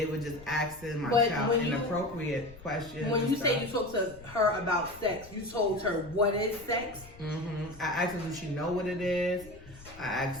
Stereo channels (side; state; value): left; noise; rumble, 19 dB below the sound